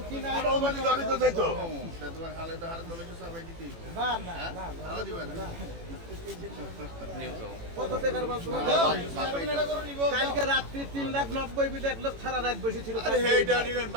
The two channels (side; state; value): left; late; 18 ms